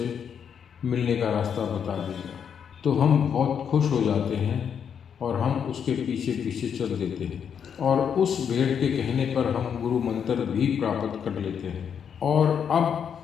मिलने का रास्ता बता देगा। तो हम बहुत खुश हो जाते हैं और हम उसके पीछे पीछे चल देते हैं, और उस भेड़ के कहने पर हम गुरु मंत्र भी प्राप्त कर लेते हैं, और अब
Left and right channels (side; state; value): right; quieter; 7.7 dB